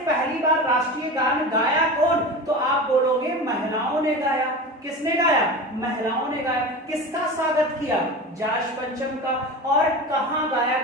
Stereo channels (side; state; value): both; normal; correlation 0.30